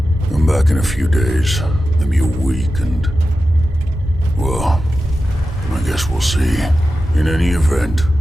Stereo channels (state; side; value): normal; both; correlation 0.92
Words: I'm back in a few days, maybe a week, and... well, I guess we'll see. In any event,